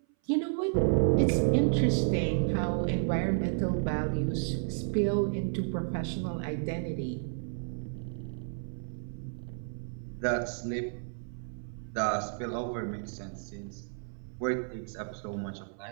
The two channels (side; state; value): left; silent; 57 dB below the other